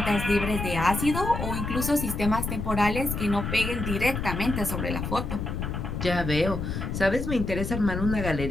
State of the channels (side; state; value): left; noise; rumble, 4 dB below the sound